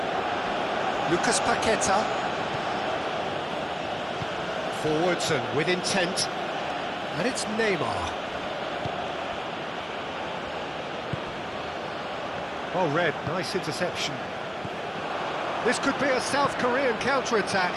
Lucas Paqueta. Forwards and with intent. And it's Neymar. Oh, Red, nice interception. This could be a South Korean counter-attack.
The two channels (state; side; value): identical; both; correlation 1.00